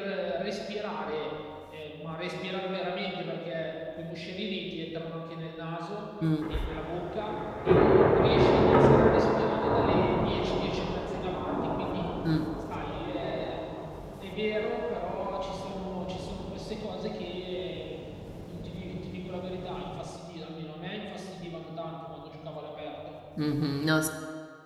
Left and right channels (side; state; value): both; identical; correlation 1.00